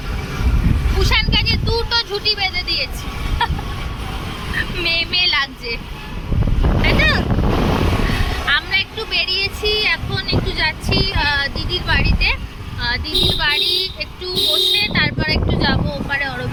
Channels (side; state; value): both; identical; correlation 1.00